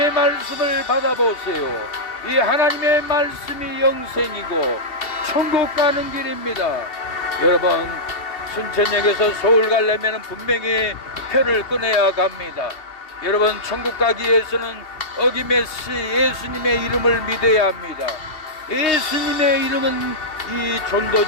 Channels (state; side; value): late; right; 2.7 ms